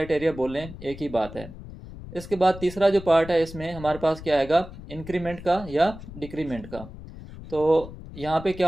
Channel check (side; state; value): left; noise; rumble, 14 dB below the sound